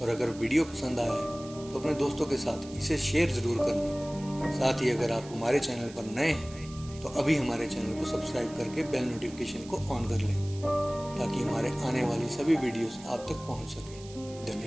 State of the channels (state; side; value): noise; right; hiss, 19 dB below the sound